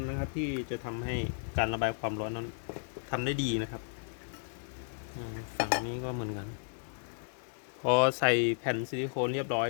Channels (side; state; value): right; silent; digital silence